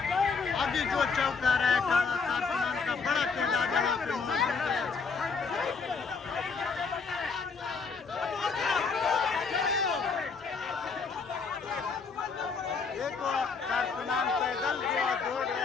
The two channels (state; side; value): quieter; right; 5.0 dB